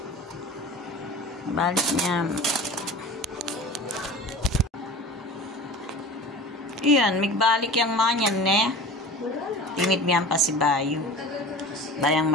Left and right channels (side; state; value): both; normal; correlation 0.37